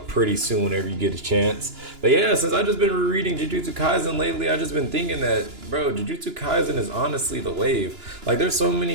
pretty soon whenever you get a chance. But yeah, since I've just been rereading Jujutsu Kaisen lately, I've just been thinking that, bro, Jujutsu Kaisen is honestly the wave. Like, there's so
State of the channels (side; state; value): left; late; 2.9 ms